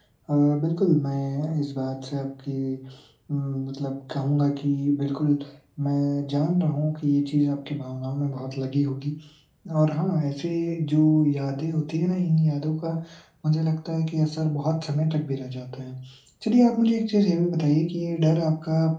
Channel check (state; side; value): identical; both; correlation 1.00